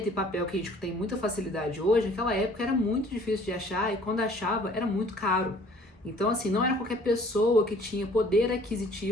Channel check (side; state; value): both; normal; correlation 0.54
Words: e papel que a gente tem muita facilidade hoje, naquela época era muito difícil de achar e quando achava era muito caro. Então, assim, não era qualquer pessoa que tinha poder